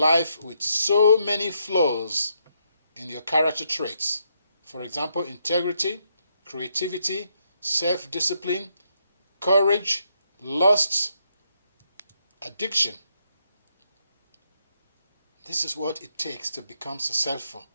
with so many flaws in your character traits. For example, integrity, creativity, self-discipline, courage, lust, addiction. This is what it takes to become successful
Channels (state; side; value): inverted; both; correlation -0.77